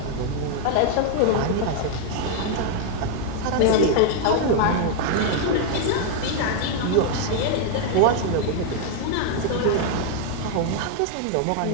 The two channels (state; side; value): different; both; correlation 0.00